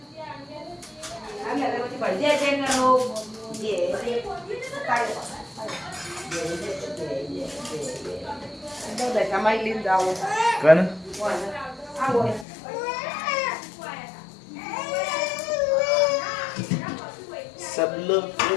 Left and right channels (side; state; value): right; drops out; at 12.5 s